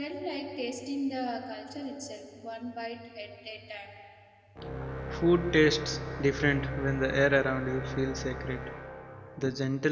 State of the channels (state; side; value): identical; both; correlation 1.00